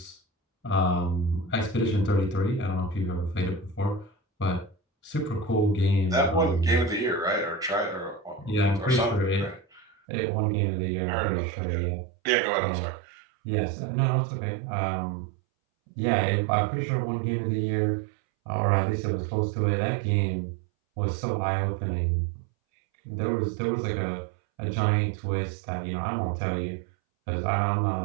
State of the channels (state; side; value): drops out; left; at 10.0 s